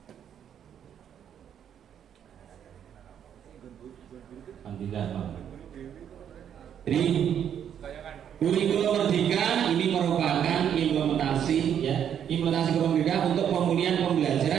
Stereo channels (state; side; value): quieter; left; 9.0 dB